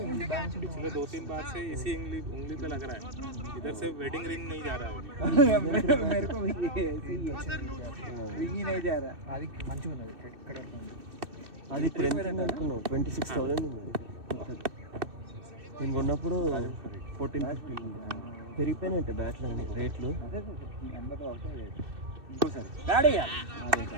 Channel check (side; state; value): left; late; 2.6 ms